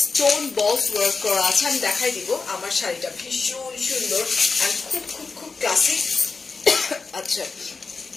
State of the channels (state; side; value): quieter; right; 4.5 dB